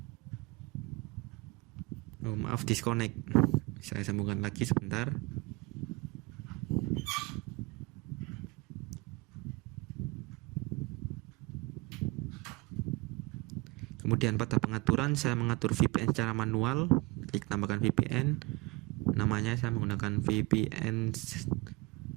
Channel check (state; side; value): quieter; left; 24.3 dB